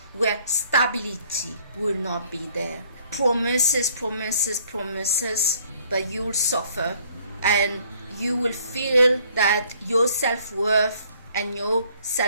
where stability will not be there. Promises, but you'll suffer, and you will feel that your self-worth and your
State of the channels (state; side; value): inverted; both; correlation -0.60